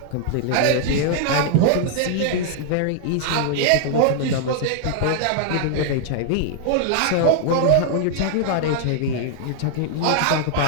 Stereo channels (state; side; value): different; both; correlation -0.01